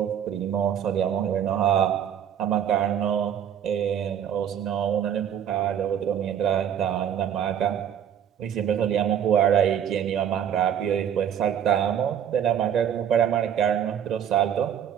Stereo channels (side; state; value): left; quieter; 9.2 dB